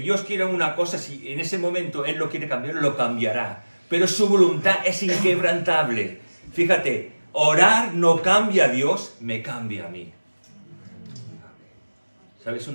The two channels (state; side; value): inverted; both; correlation -1.00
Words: quiera una cosa, si en ese momento Él lo quiere cambiar, lo cambiará. Pero su voluntad es inquebrantable. Fíjate, orar no cambia a Dios, me cambia a mí. ¿Sabes